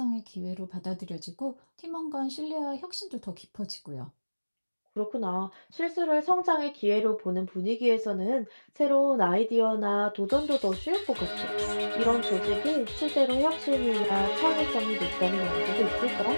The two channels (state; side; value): inverted; both; correlation -1.00